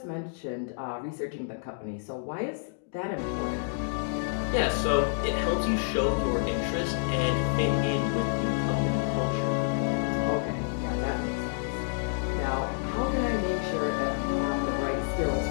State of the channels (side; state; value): right; silent; digital silence